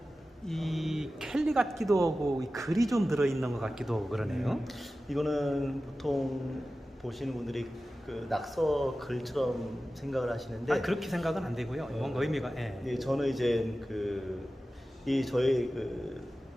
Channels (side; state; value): both; normal; correlation 0.95